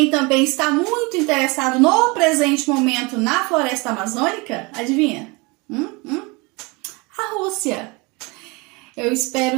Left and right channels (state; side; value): quieter; left; 27.0 dB